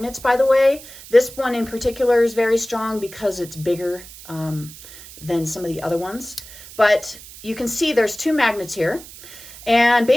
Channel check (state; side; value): noise; right; hiss, 17 dB below the sound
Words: by the way. This one in particular is very strong because it's bigger than some of the other ones. But you can see there's two magnets here, and